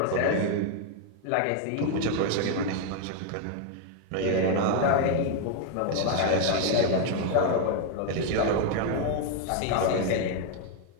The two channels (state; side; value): different; both; correlation 0.00